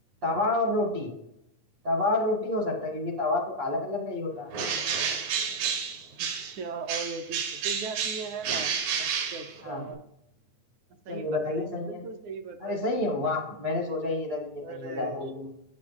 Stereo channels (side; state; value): left; late; 9.5 ms